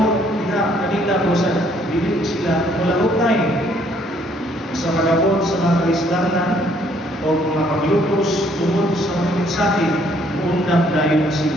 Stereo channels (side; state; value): both; normal; correlation 0.65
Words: nila kanila o sa dili sila mulahutay sa pagabot sa mga kaisdanan o mga paglutos tungod sa mga mensahe, undang dayon na